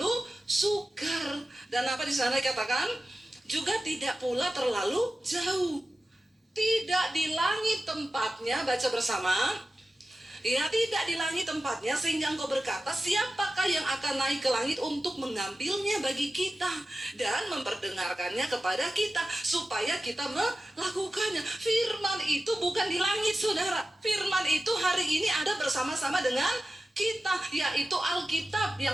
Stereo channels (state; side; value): normal; both; correlation 0.94